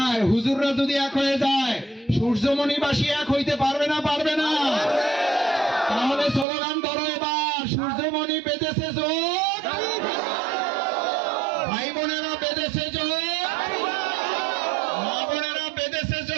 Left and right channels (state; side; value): drops out; left; at 6.5 s